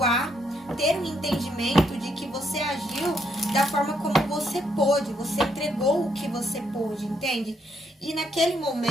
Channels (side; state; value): both; normal; correlation 0.74